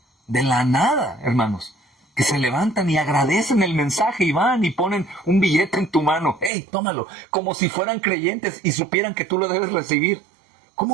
De la nada, hermanos, que se levantan y agradecen el mensaje y van y ponen un billete en tu mano. ¡Hey, tómalo! Como si fueran creyentes y supieran que tú lo debes recibir.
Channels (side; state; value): left; drops out; at 6.5 s